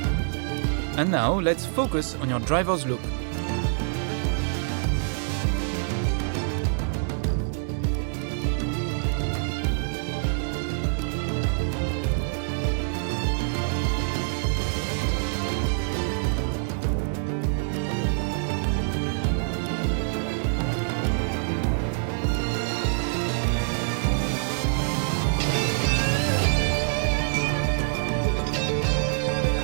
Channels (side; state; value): left; silent; 60 dB below the other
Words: And now let's focus on your driver's look.